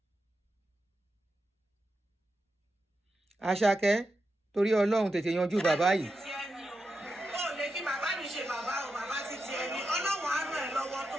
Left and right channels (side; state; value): both; normal; correlation 0.88